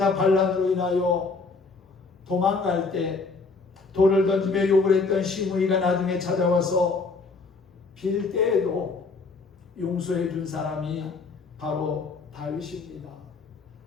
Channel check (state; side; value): quieter; right; 4.2 dB